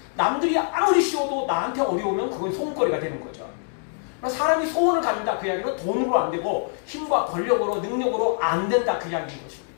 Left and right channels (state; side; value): silent; right; digital silence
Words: 남들이 아무리 쉬워도 나한테 어려우면 그건 소원거리가 되는 거죠. 사람이 소원을 갖는다 그 이야기는 돈으로 안 되고 힘과 권력으로 능력으로 안 된다 그 이야기인